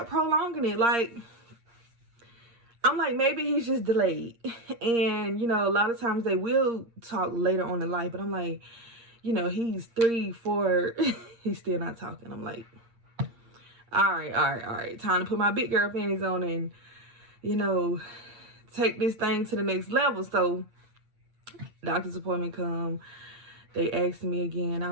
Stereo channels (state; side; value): late; left; 8.6 ms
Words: prolonging it. Like, I'm like, maybe he's just delayed. And you know, a lot of times they will talk later on in life, but I'm like, you know, he's 3, 4, he's still not talking. I'm like, all right. Time to put my big girl panties on and, you know, take this thing to the next level. So doctor's appointment come. They asked me again. I